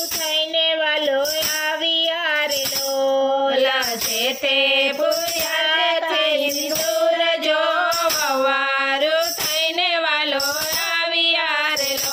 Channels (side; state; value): both; identical; correlation 1.00